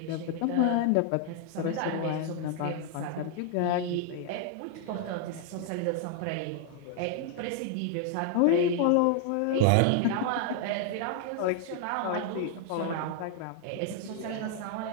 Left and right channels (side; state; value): both; different; correlation 0.00